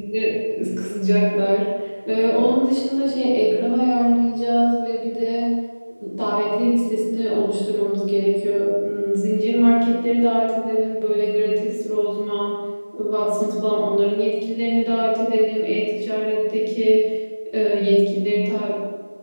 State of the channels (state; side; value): inverted; both; correlation -1.00